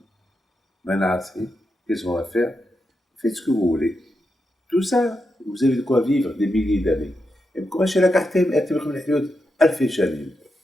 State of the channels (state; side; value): normal; both; correlation 0.86